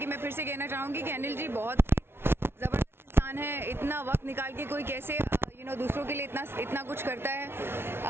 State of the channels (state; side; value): late; left; 0.12 ms